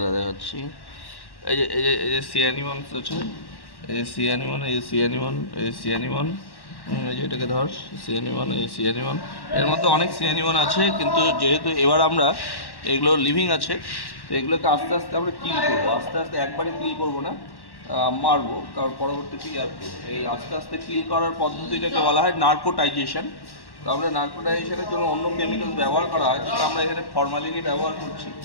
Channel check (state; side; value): late; right; 1.1 ms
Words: দেখাচ্ছি। এই যে সি অ্যানিমনস আছে, এই যে সি অ্যানিমন, এই যে সি অ্যানিমন, এই যে সি অ্যানিমন, এই যে এটাকে ধর সি অ্যানিমন, এই সি অ্যানিমন। এর মধ্যে অনেক সি অ্যানিমন আছে, কিন্তু যেহেতু এবার আমরা এগুলো লিভিং আছে, তো এগুলোকে আস্তে আস্তে আমরা কিল করবো। আস্তে আস্তে একবারে কিল করবো না, মারবো, কারণ পরবর্তীতে ইয়ার করবো। এই আস্তে আস্তে কিল করার পদ্ধতিটাকে বলা হয় নার্কোটাইজেশন। তো আমরা নার্কোটাইজেশনের জন্য অন্য কেমিক্যাল ব্যবহার করা হয়, কিন্তু আমরা এখানে ফরমালিনই ব্যবহার করছি।